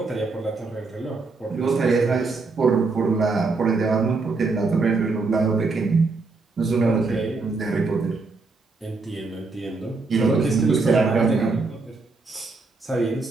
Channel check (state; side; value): quieter; left; 3.9 dB